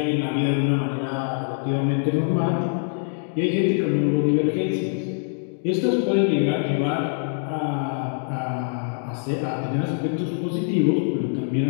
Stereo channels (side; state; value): right; silent; 63 dB below the other